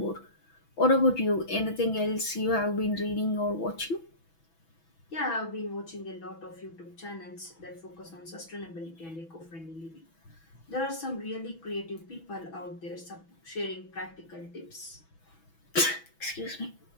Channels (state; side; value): late; right; 6.1 ms